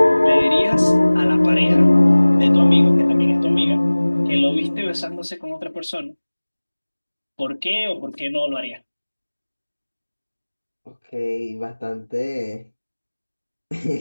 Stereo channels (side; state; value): both; inverted; correlation -1.00